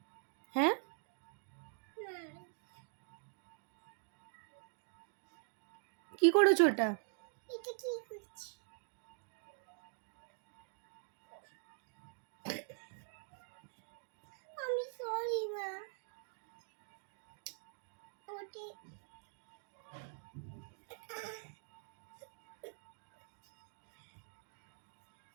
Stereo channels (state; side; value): silent; left; digital silence